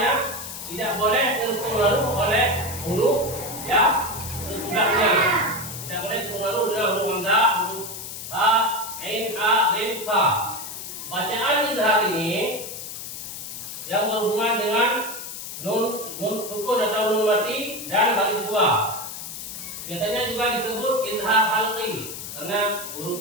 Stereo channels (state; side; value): noise; left; hiss, 9 dB below the sound